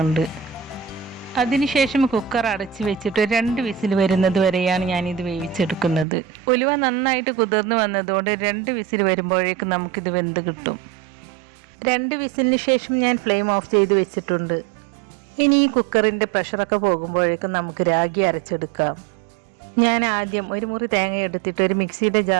അതിനുശേഷം കുക്കർ അടച്ച് വെച്ചിട്ട് 2 വിസിൽ വരുന്നത് വരെയാണ് ഞാനിത് വേവിച്ചെടുക്കുന്നത്. ഉലുവ നന്നായിട്ട് കുതിർന്ന് വന്നതുകൊണ്ട് 2 വിസിൽ വരുമ്പോഴേക്കും നമുക്കിത് വെന്ത് കിട്ടും. 2 വിസിലിന് ശേഷം ഞാൻ ഫ്ലെയിം ഓഫ് ചെയ്ത് വെച്ചിട്ടുണ്ട്. ഇനി ഈ കുക്കറിൻ്റെ പ്രഷറൊക്കെ പോകുമ്പോഴേക്കും നമുക്ക് രാഗി അരച്ചെടുക്കാം. ഞാൻ ആദ്യം 1 മുറി തേങ്ങ എടുത്തിട്ട് ഒരു മിക്സിയുടെ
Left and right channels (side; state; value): left; drops out; at 6.1 s